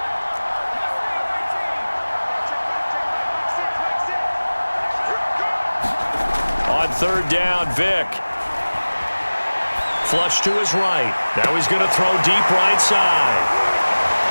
On 3rd down, Vic. Flush to his right. Now he's going to throw deep right side.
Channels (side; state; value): both; inverted; correlation -1.00